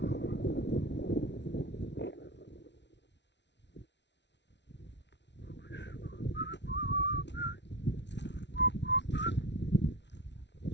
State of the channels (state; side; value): late; right; 0.51 ms